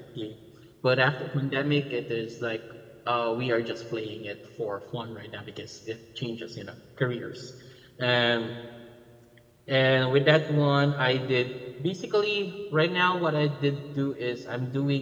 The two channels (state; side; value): identical; both; correlation 1.00